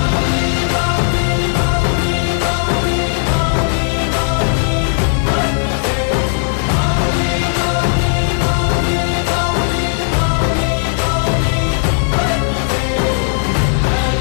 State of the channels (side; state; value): right; silent; digital silence